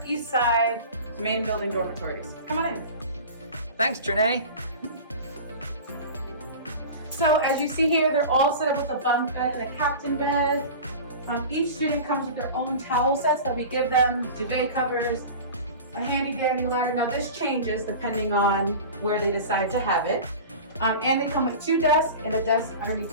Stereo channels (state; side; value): inverted; both; correlation -0.34